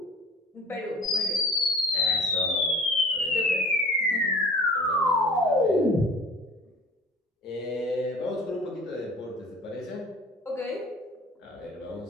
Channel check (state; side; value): normal; both; correlation 0.44